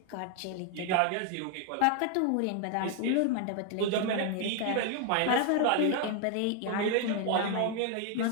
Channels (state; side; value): different; both; correlation 0.00